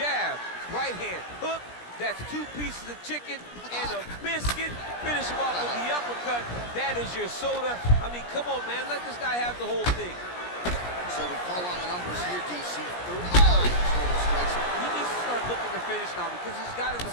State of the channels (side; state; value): right; late; 17 ms